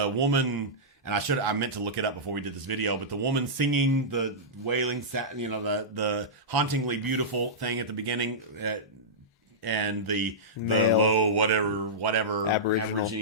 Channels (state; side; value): normal; both; correlation -0.14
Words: And I meant to look it up before we did this video, but the woman singing the wailing, the hauntingly beautiful thing at the beginning. And the low whatever